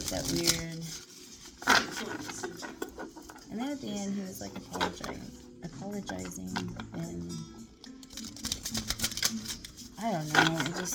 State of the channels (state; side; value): identical; both; correlation 1.00